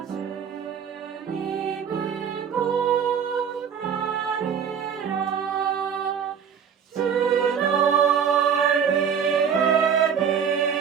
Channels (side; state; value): left; quieter; 7.5 dB